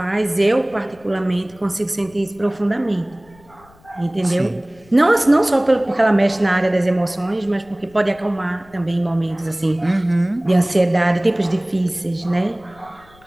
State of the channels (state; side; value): noise; left; rumble, 28 dB below the sound